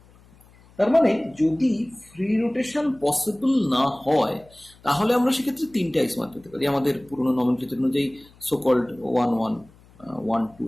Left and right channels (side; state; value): left; noise; hum, 27 dB below the sound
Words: তার মানে যদি ফ্রি রোটেশন পসিবল না হয় তাহলে আমরা সেক্ষেত্রে তিনটে আইসোমার পেতে পারি আমাদের পুরনো নমেনক্লেচার অনুযায়ী সোকল্ড 1 1 1